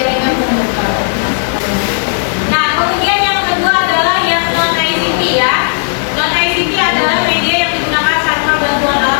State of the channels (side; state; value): right; silent; digital silence